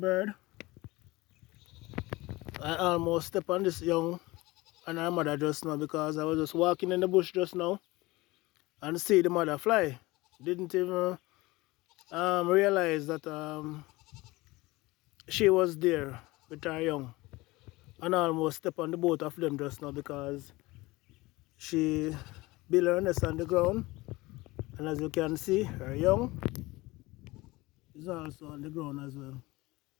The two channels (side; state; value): right; quieter; 21.1 dB